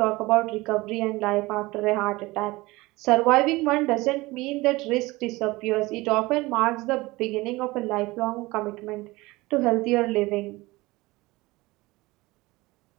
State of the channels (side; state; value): left; quieter; 21.2 dB